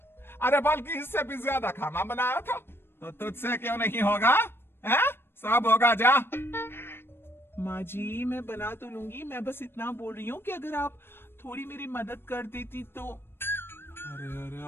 अरे बल्कि इससे भी ज्यादा खाना बनाया था, तो तुझसे क्यों नहीं होगा? है? सब होगा जा। माँ जी मैं बना तो लूंगी, मैं बस इतना बोल रही हूँ कि अगर आप थोड़ी मेरी मदद कर देती तो। अरे अरे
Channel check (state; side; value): late; right; 0.11 ms